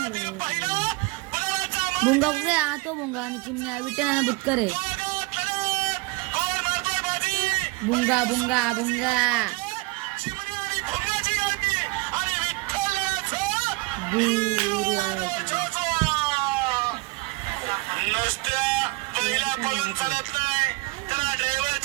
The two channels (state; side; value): quieter; left; 25.0 dB